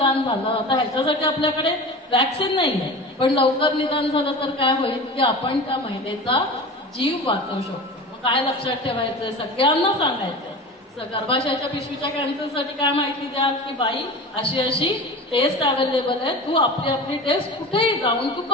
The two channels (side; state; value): both; normal; correlation 0.33